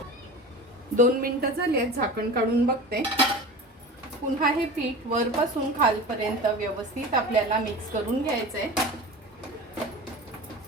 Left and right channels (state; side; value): normal; both; correlation 0.33